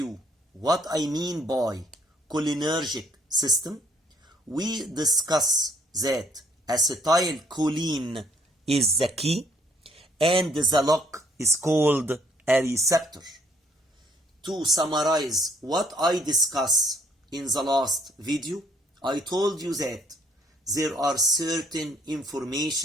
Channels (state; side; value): normal; both; correlation 0.64